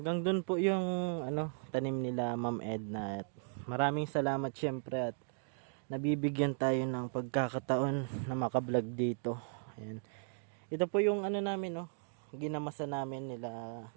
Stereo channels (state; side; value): silent; left; 53 dB below the other